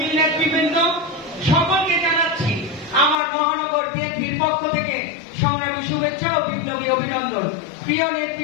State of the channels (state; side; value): drops out; right; at 3.2 s